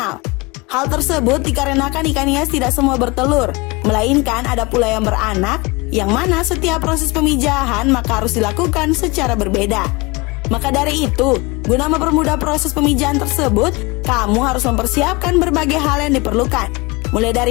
Hal tersebut dikarenakan ikan hias tidak semua bertelur, melainkan ada pula yang beranak, yang mana setiap proses pemijahan maka harus dilakukan secara berbeda. Maka dari itu, guna mempermudah proses pemijahan tersebut, kamu harus mempersiapkan berbagai hal yang diperlukan, mulai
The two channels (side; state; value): right; quieter; 25.1 dB